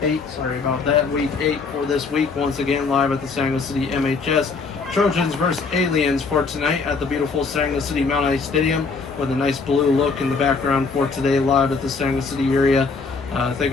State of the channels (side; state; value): right; quieter; 4.5 dB